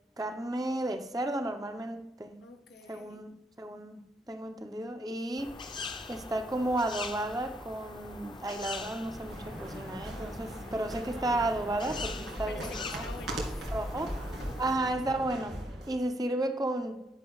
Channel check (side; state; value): both; normal; correlation 0.73